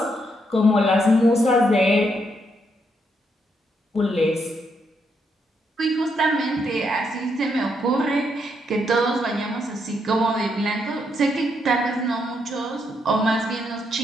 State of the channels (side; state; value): both; normal; correlation 0.77